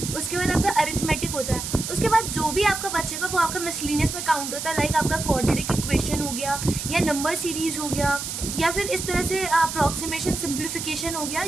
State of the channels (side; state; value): right; noise; hiss, 5 dB below the sound